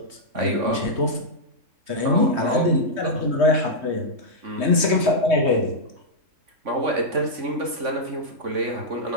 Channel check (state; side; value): late; left; 3.2 ms